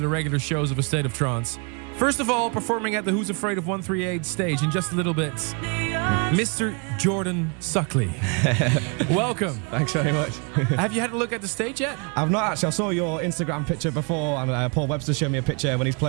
regular shows of A State of Trance. First of all, performing at the Who's Afraid of 138 stage in just a little bit, Mr. Jordan Suckley. Welcome. Thanks very much. Have you had a look at the stage yet? I've not actually. I saw your Instagram picture before, and Paul Webster showed me a picture when he's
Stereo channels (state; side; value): quieter; left; 34.7 dB